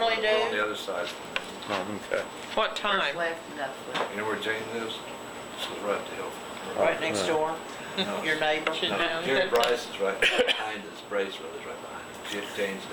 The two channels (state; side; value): identical; both; correlation 1.00